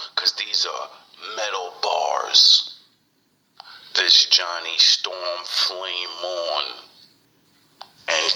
cause these are metal bars. This Johnny Storm Flame On,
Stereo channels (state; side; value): normal; both; correlation 0.96